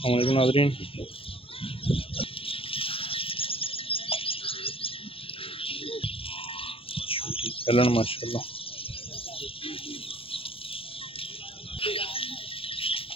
वालेकुम नाज़रीन। छोटी कलन माशाल्लाह।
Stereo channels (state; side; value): late; right; 0.27 ms